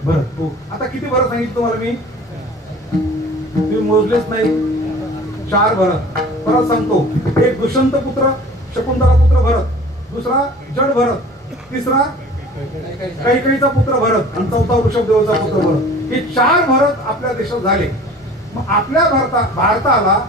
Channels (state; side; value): normal; both; correlation 0.45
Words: भरत. हो आता किती भरत सांगितलं तुम्हाला मी, तुम्ही मोजलेच नाही. 4 भरत. परत सांगतो. एक दुष्यंत पुत्र शकुंतला पुत्र भरत, दुसरा जड भरत, तिसरा कैकेयीचा पुत्र भरत आणि चौथा ऋषभदेवाचा पुत्र भरत. हे 4 भरत आपल्या देशात झाले. मग आपल्या भारताला